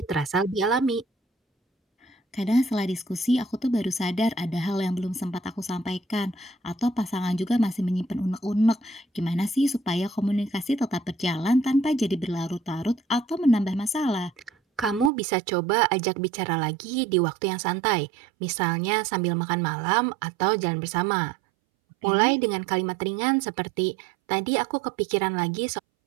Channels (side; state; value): left; drops out; at 15.1 s